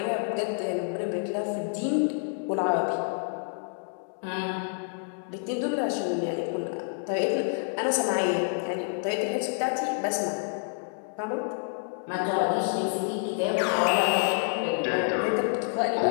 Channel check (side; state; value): right; silent; digital silence